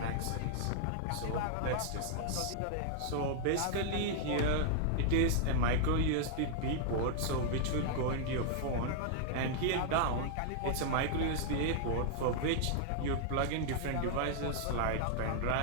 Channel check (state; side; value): different; both; correlation -0.01